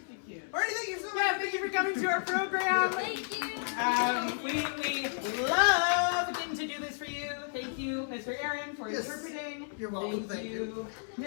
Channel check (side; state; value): right; silent; 56 dB below the other